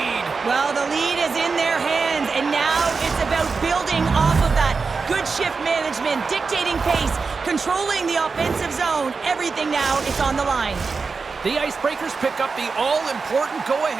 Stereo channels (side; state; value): left; quieter; 4.7 dB